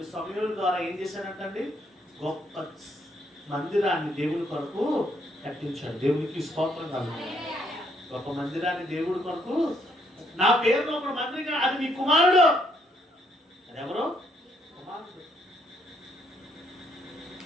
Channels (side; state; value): both; normal; correlation 0.71